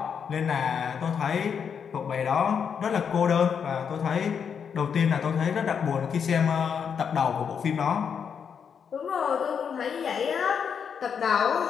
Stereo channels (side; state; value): right; quieter; 7.1 dB